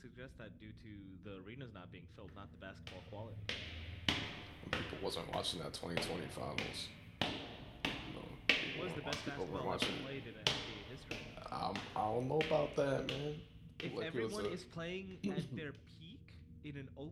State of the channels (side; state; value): both; identical; correlation 1.00